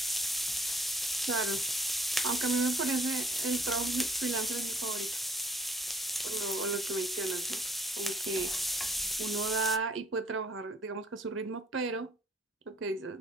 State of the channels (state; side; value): normal; both; correlation 0.61